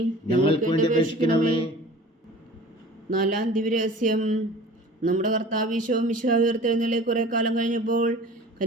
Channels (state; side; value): normal; both; correlation 0.43